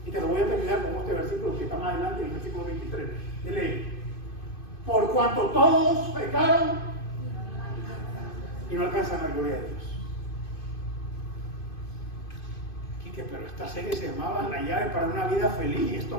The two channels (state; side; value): late; right; 2.5 ms